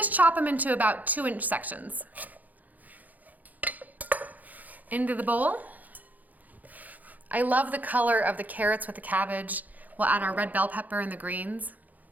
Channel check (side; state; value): left; late; 0.080 ms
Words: chop them into about 2-inch sections. Into the bowl. I love the color of the carrots with the cabbage. We'll add our red bell pepper and the greens.